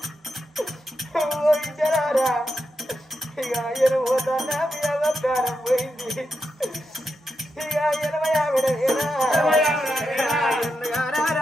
ఇద్దరారా ఇక ఆయన పోతానా మీ అవకారం పోయింది ఇక 80 ఆవిడ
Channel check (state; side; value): normal; both; correlation 0.86